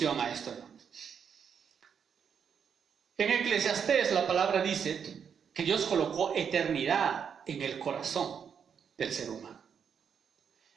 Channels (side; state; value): left; quieter; 7.3 dB